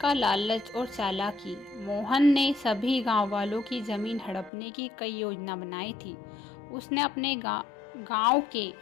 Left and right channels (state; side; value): drops out; right; at 4.5 s